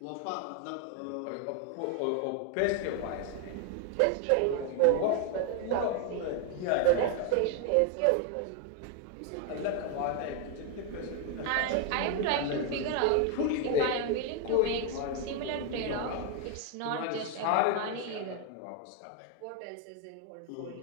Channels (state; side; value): different; both; correlation 0.00